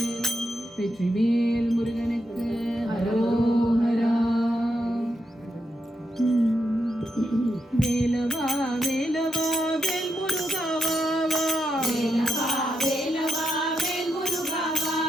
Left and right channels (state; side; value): normal; both; correlation 0.84